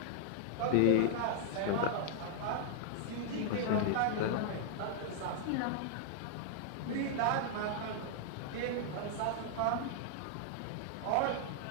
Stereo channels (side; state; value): both; different; correlation -0.01